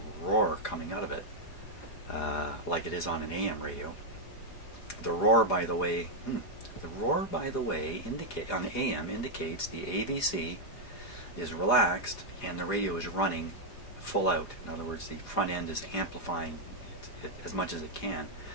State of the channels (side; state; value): right; late; 4.9 ms